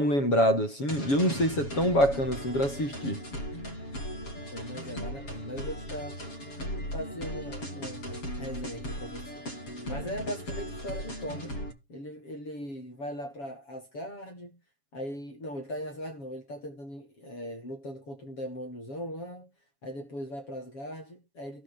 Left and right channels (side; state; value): right; late; 7.2 ms